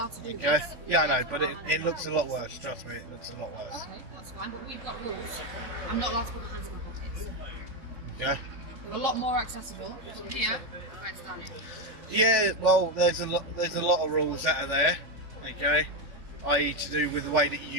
to do Okay. this. Yeah, I know, We're allowed to but put our hands it in looks a our lot pockets. worse. Trust me, it looks a lot worse. Okay, that's fine, but we've got rules. I'm not allowed to put my hands in my pockets. Okay. They're a lot more accessible from here where it's down here. Yeah. Well, there's a lot of rules that are there. Okay. I.e. to do with the way that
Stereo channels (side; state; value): left; late; 3.5 ms